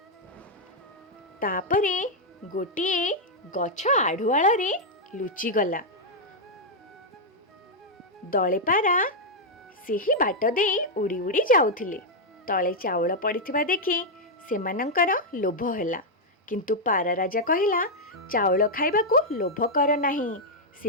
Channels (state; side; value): normal; both; correlation -0.03